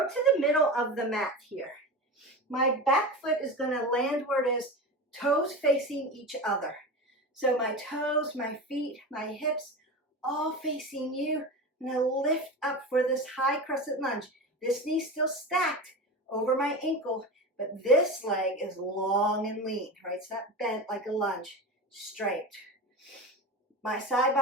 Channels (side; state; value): both; normal; correlation 0.27